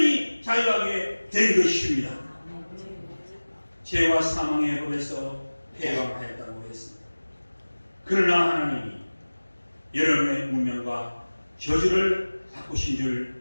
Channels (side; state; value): both; inverted; correlation -1.00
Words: 자유하게 된 것입니다. 죄와 사망의 법에서 해방하였다고 했습니다. 그러나 하나님이 여러분의 운명과 저주를 바꾸신 줄